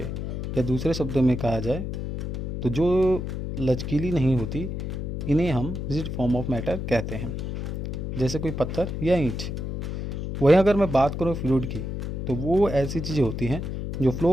या दूसरे शब्दों में कहा जाए तो जो लचकीली नहीं होती, इन्हें हम रिजिड फॉर्म ऑफ मैटर कहते हैं, जैसे कोई पत्थर या ईंट। वहीं अगर मैं बात करूँ फ्लूइड की, तो वो ऐसी चीज़ें होती हैं जो फ्लो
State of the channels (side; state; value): left; noise; hum, 4 dB below the sound